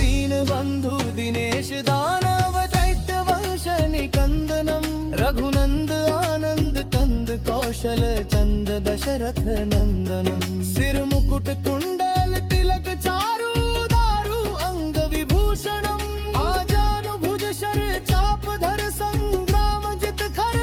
बंधु दिनेश दानव दैत्य वंश निकंदनम रघु दशरथ नंदनम सिर मुकुट कुंडल तिलक चारु दारु अंग विभूषणम आजानु भुज शर चाप धर संग्राम जित खर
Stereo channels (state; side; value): identical; both; correlation 1.00